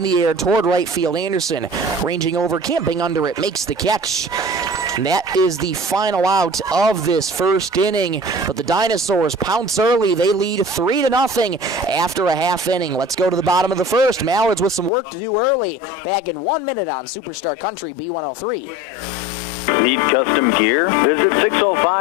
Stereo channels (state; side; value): drops out; right; at 14.9 s